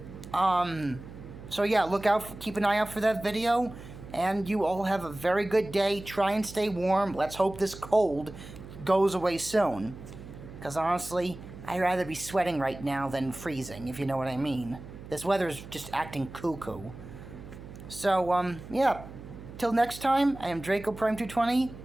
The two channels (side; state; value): right; noise; hum, 14 dB below the sound